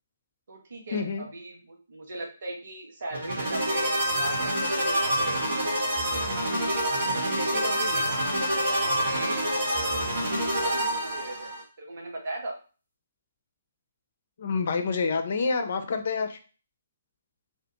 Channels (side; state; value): both; inverted; correlation -0.74